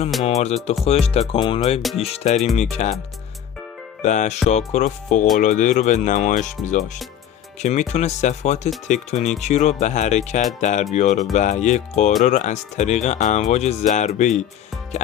مبارزات خودش تکامل‌های بیشتری میکرد و شاکور فوق‌العاده‌ای رو به نمایش میذاشت که میتونه صفات تکتونیکی رو به حرکت در بیاره و یک قاره رو از طریق امواج ضربه‌ای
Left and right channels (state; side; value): quieter; right; 9.8 dB